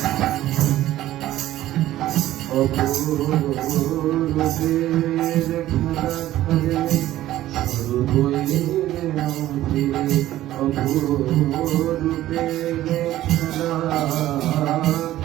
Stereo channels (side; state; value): left; quieter; 14.3 dB